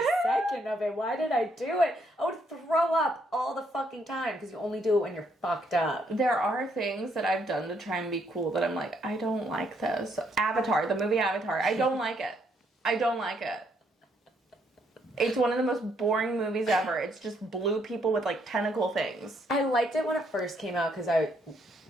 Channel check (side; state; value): both; normal; correlation 0.72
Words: second of it. Why did I do it? I would throw up all the fucking time because you only do it when you're fucked up. There are things that I've done to try and be cool that I'm like, I don't like this. Avatar, the movie Avatar, I don't like it. I don't like it. It's one of the most boring movies ever. It's just blue people with, like, tentacle things. I liked it when it first came out because I